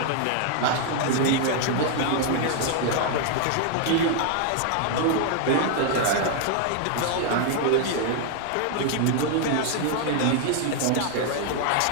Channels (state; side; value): different; both; correlation 0.00